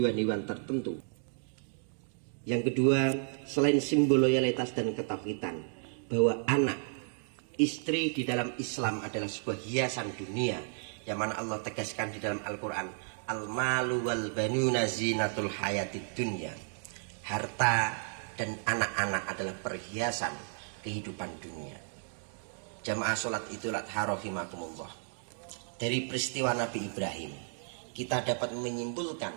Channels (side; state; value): left; silent; 56 dB below the other